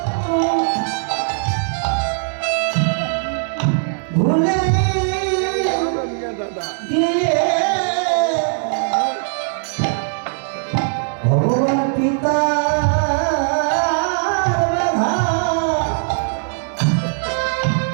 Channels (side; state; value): left; silent; digital silence